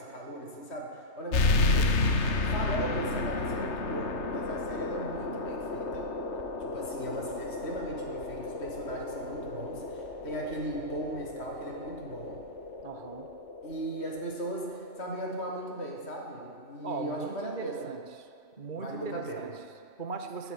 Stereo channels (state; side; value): late; right; 3.3 ms